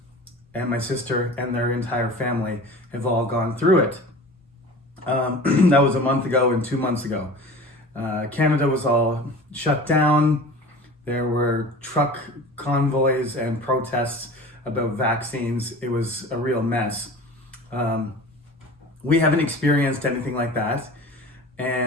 and my sister and their entire family have all gone through it. That was a month ago and 2 months ago. Canada was all shut down. There were truck convoys and protests about vaccines. It was a real mess. We haven't experienced anything like that,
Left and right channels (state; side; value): normal; both; correlation 0.38